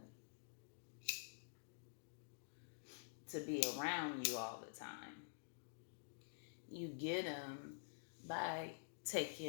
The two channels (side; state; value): right; silent; digital silence